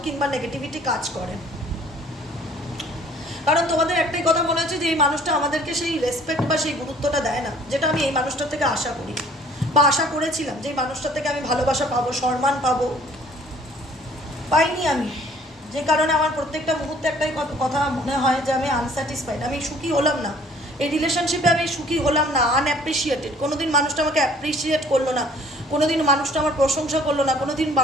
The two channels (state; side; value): normal; both; correlation 0.55